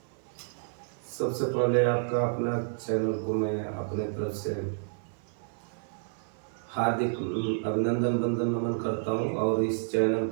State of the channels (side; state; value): left; silent; 58 dB below the other